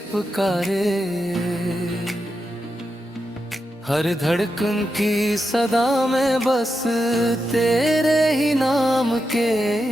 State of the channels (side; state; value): both; normal; correlation 0.87